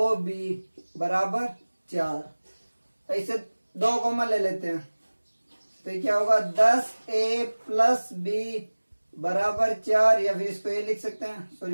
बराबर 4। इसे 2 कॉमन ले लेते हैं, तो ये क्या होगा, 10a प्लस b बराबर 4, या फिर इसको ये लिख सकते हैं,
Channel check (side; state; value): both; inverted; correlation -1.00